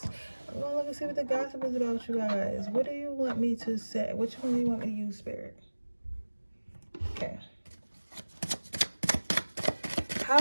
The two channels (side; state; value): both; inverted; correlation -1.00